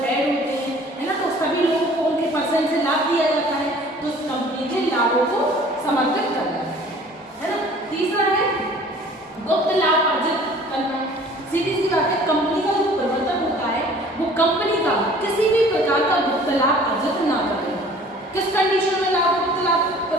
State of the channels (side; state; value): both; normal; correlation 0.50